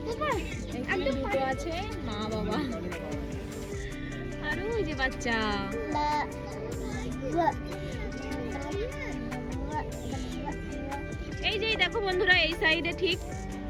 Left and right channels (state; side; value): identical; both; correlation 1.00